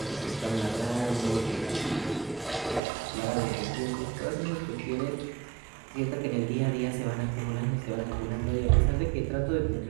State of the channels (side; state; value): left; drops out; at 2.8 s